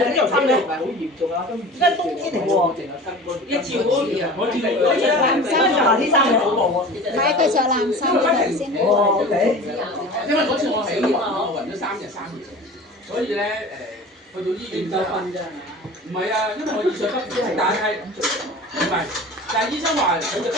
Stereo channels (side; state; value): both; normal; correlation 0.37